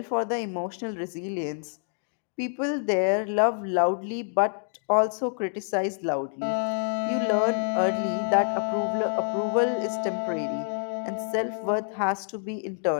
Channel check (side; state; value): right; silent; digital silence